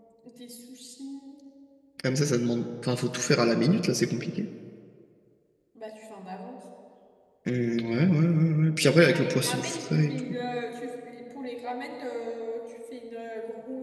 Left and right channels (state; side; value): identical; both; correlation 1.00